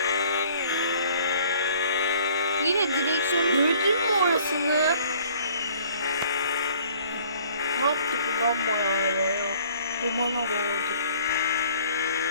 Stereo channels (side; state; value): both; inverted; correlation -0.55